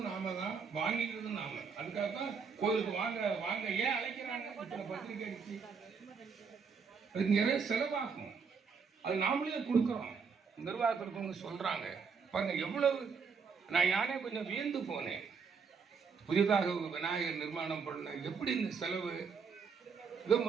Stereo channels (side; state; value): left; quieter; 5.7 dB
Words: நாம தான், வாங்கிக்கிறதும் நாம. அதுக்காக தான் கோயிலுக்கு வாங்க வாங்க ஏன் அழைக்கிறாங்க, இத்தனை பத்திரிகை அடிச்சு அதுக்கு நிறைய செலவாகும். அது நாமளே கொடுக்குறோம். நிர்வாகத்திற்கு சொல்றாங்க பாருங்க எவ்வளவு. நான் யானே கொஞ்சம் வியந்து போனேன். புதிதாக விநாயகர் நிர்மாணம் பண்ண எப்படி இந்த செலவு. இதோ